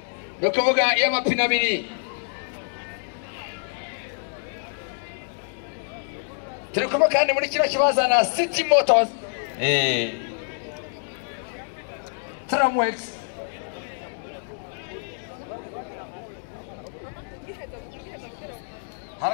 nakavuga iyo amapine abiri turi kumwe kandi muri kino kibazo na City Motors Tramwex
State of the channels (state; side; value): silent; right; digital silence